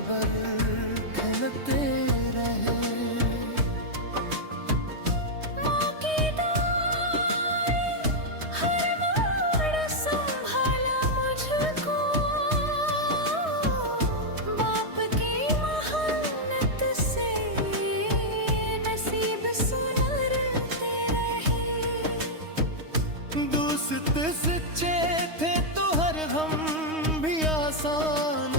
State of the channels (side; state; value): left; late; 3.2 ms